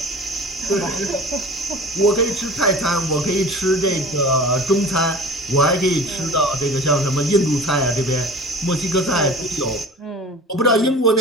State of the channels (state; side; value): normal; both; correlation 0.40